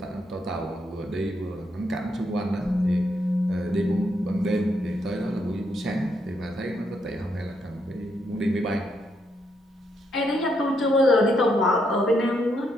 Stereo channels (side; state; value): both; normal; correlation 0.77